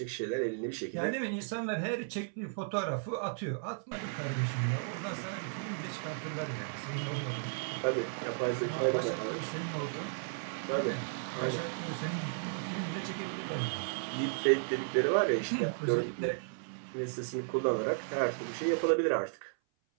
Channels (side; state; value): left; silent; 55 dB below the other